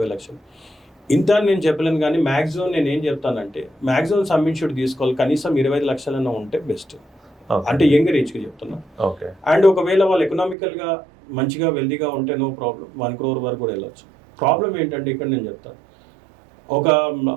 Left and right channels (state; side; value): drops out; left; at 10.6 s